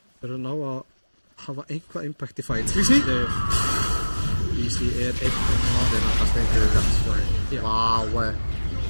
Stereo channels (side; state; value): both; inverted; correlation -1.00